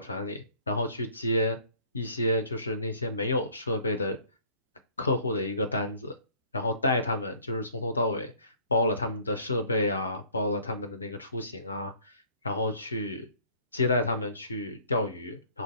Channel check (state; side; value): inverted; both; correlation -0.56